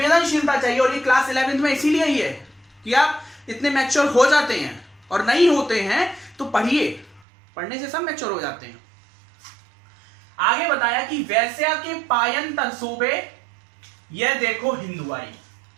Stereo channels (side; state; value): left; drops out; at 7.2 s